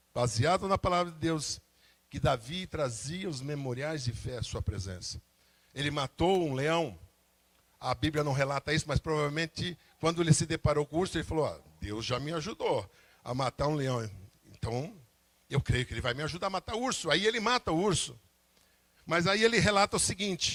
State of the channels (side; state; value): both; identical; correlation 1.00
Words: baseado na palavra de Deus, que Davi trazia os memoriais de fé à sua presença. Ele matou um leão. A Bíblia não relata isso, mas provavelmente quando ele se deparou com o urso, ele falou: Deus já me ajudou a matar um leão. Então, eu creio que ele vai me ajudar a matar o urso. Aí ele mata o urso. Mas aí ele relata o